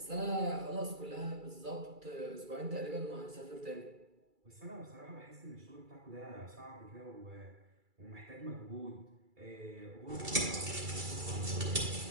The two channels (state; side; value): late; left; 2.3 ms